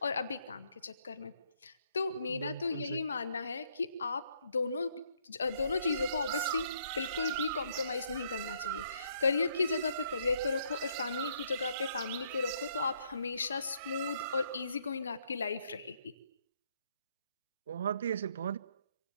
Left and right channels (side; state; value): both; inverted; correlation -0.70